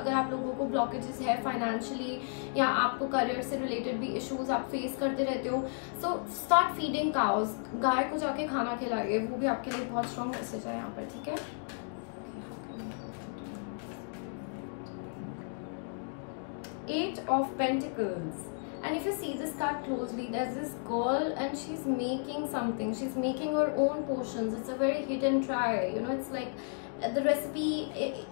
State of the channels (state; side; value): silent; right; 56 dB below the other